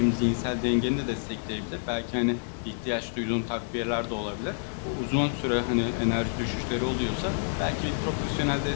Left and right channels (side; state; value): right; silent; 59 dB below the other